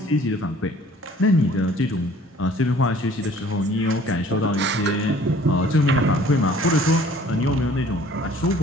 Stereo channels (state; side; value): normal; both; correlation 0.53